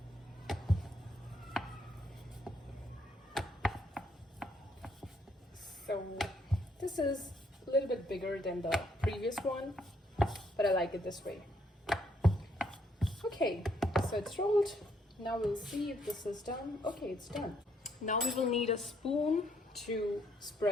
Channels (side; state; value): both; normal; correlation 0.71